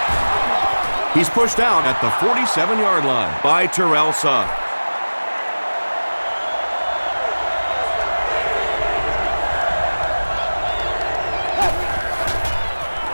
He's pushed out at the 47-yard line by Terrell Sugg.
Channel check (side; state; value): both; inverted; correlation -1.00